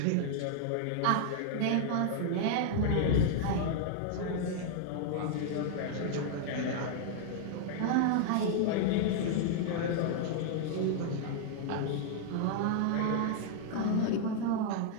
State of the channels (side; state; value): both; different; correlation -0.01